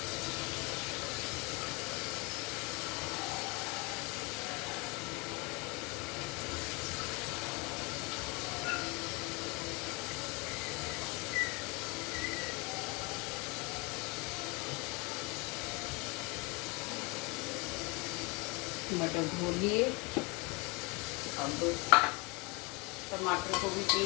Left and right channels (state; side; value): quieter; right; 28.6 dB